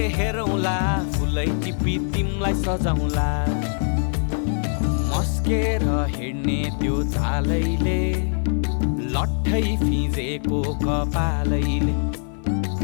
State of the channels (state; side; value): silent; right; 57 dB below the other